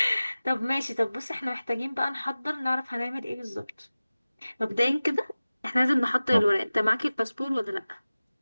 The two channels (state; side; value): inverted; both; correlation -0.97